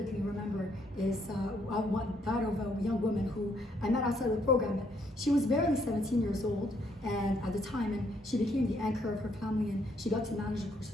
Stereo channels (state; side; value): normal; both; correlation 0.71